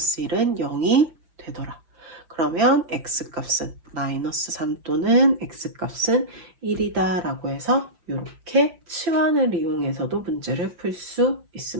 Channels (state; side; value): late; left; 5.9 ms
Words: 0이 되더라. 그러면 X값은 마이너스 3 또는 X값은 1이다 라고 해서 이렇게 치환을 이용해서도 문제를 풀 수